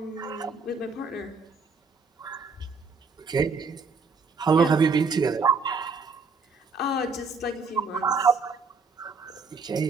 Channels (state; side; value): quieter; left; 4.4 dB